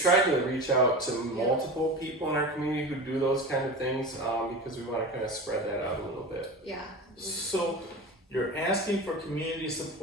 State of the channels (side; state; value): both; normal; correlation 0.29